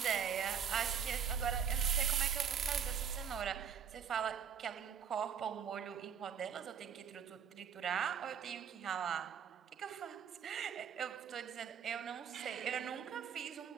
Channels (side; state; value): left; quieter; 7.5 dB